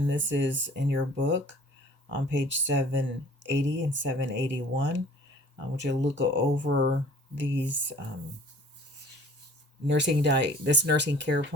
this is in your book on page 780 and 781. Which you'll look over these this nursing care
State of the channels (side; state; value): both; normal; correlation 0.50